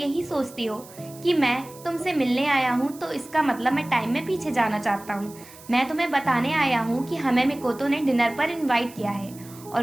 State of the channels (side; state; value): right; noise; hiss, 20 dB below the sound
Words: सोचती हो कि मैं तुमसे मिलने आया हूँ तो इसका मतलब मैं टाइम में पीछे जाना चाहता हूँ। मैं तुम्हें बताने आया हूँ कि हमें मिकोतो ने डिनर पर इनवाइट किया है